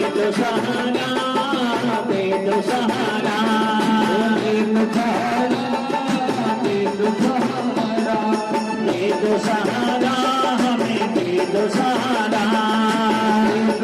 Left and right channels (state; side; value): identical; both; correlation 1.00